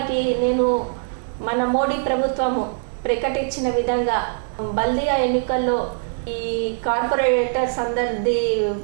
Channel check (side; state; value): left; silent; digital silence